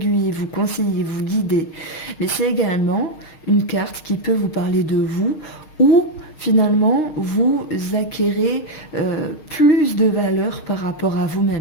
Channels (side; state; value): right; late; 6.5 ms